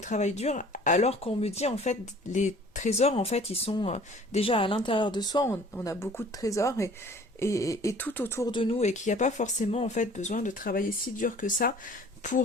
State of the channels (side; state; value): both; normal; correlation 0.50